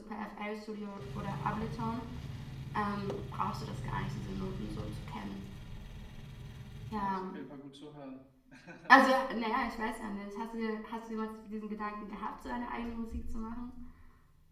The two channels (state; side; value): identical; both; correlation 1.00